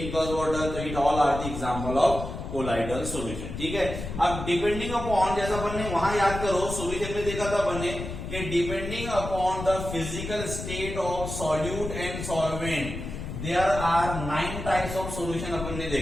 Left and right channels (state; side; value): noise; left; rumble, 7 dB below the sound